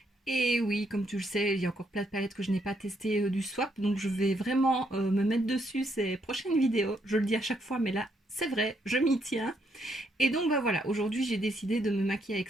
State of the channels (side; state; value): both; normal; correlation 0.75